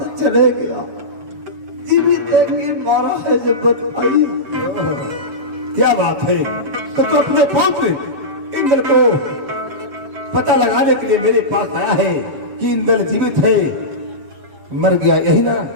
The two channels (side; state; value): left; late; 7.5 ms